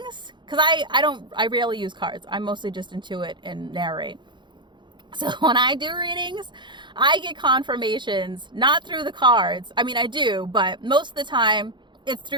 because I rarely use cards. I mostly just intuit and narrate. So when I do readings, I get confirmations, not through the cards. I mean, I do, but most of the time it's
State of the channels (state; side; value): late; left; 0.23 ms